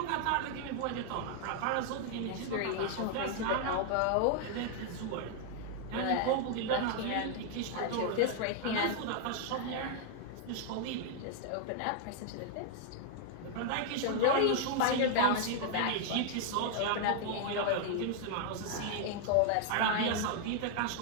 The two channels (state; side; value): different; both; correlation 0.00